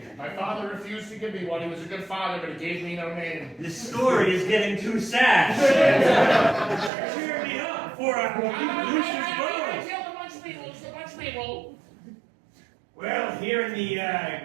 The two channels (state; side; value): drops out; left; at 6.9 s